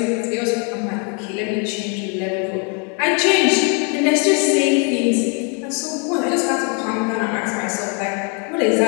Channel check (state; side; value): quieter; right; 35.4 dB